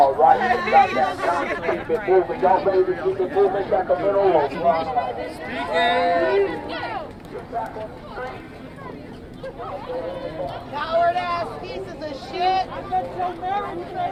right. Keep it moving. Y'all ready to keep it moving? Sacramento. Coward ass pieces of shit. I'm gonna tell Mary today,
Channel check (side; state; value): both; identical; correlation 1.00